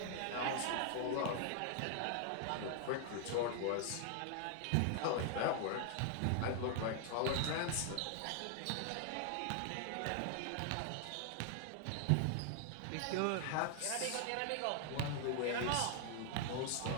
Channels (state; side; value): different; both; correlation 0.00